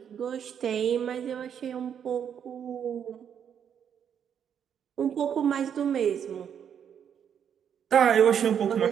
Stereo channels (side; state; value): left; quieter; 8.4 dB